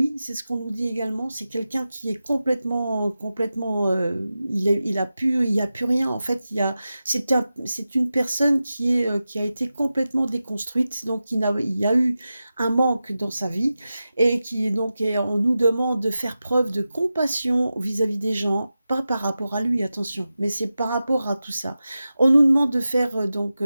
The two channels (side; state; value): both; inverted; correlation -0.93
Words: c'est ce qu'on nous dit également. C'est quelqu'un qui est complètement, il a plus rien. En fait, c'est une personne qui a été complètement déconstruite. Donc il y a eu un manque dans sa vie et on nous demande de faire preuve de compassion vis-à-vis des gens, pas par rapport à lui, attention, mais c'est par rapport à tout ça. On nous demande de faire donc